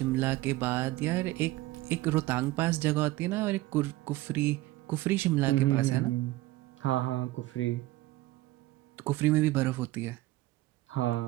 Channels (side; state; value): left; quieter; 17.8 dB